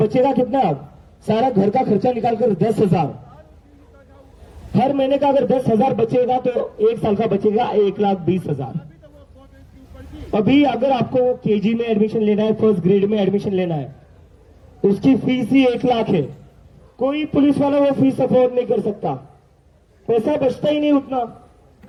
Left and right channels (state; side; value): identical; both; correlation 1.00